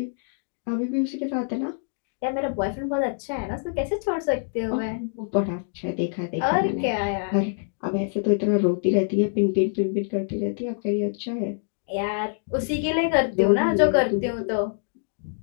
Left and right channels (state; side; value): silent; right; digital silence